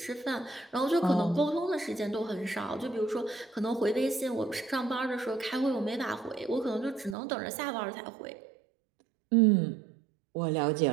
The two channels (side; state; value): left; drops out; at 7.2 s